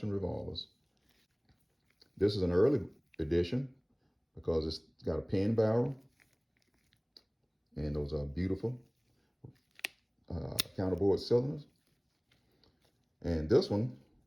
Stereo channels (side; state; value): both; identical; correlation 1.00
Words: revolvers. This is an early edition because it's got a pin barrel, and those are beautiful counterbore cylinders. And this one,